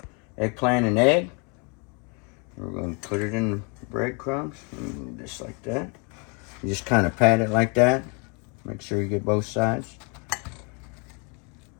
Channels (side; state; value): right; quieter; 34.2 dB